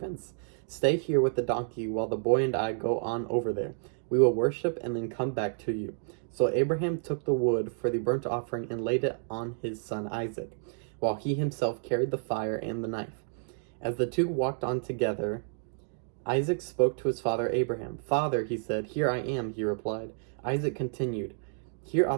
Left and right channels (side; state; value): left; silent; digital silence